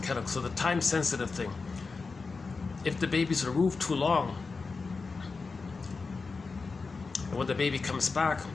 Kellogg. So the time-sensitive thing. If the baby's removed too long, and when the baby comes back,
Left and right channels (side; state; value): right; quieter; 4.4 dB